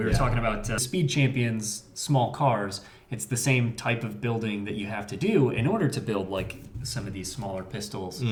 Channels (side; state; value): both; identical; correlation 1.00